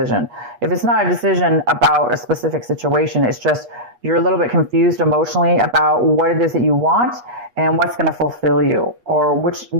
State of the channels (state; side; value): late; left; 8.3 ms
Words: If it's not a decision about a specific situation, it's just you're a little bit confused emotionally about what it is that you want and what's going to fulfill you, or